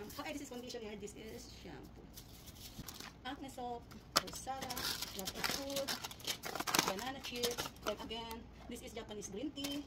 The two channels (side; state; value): both; identical; correlation 1.00